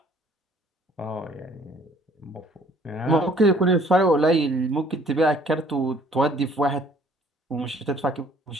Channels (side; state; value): both; normal; correlation 0.58